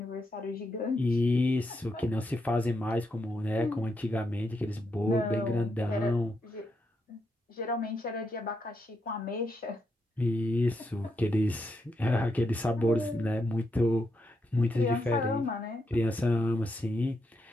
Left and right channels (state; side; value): normal; both; correlation 0.81